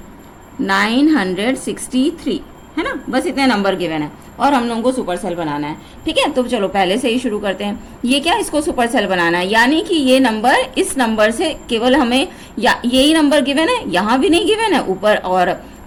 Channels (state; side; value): identical; both; correlation 1.00